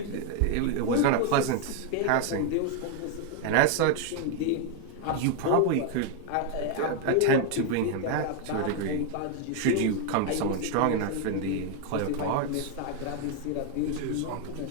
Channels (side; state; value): both; different; correlation 0.00